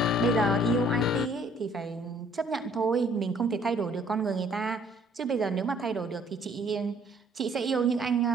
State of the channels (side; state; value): both; normal; correlation 0.60